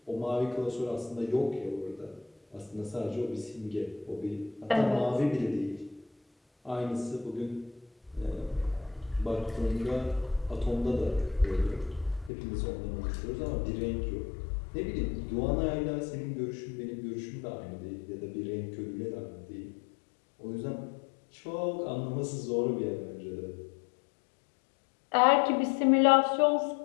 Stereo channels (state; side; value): drops out; right; at 12.3 s